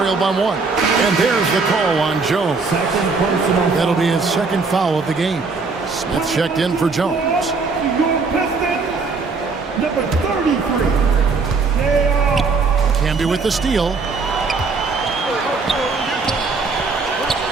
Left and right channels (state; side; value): quieter; left; 4.4 dB